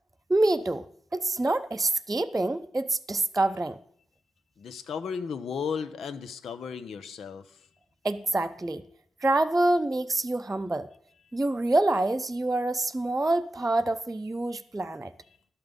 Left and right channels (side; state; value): both; normal; correlation 0.91